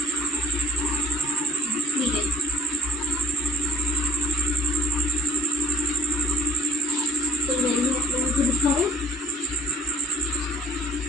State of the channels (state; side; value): normal; both; correlation 0.50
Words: ठीक है तो यही आप लोगों को दिखाओ।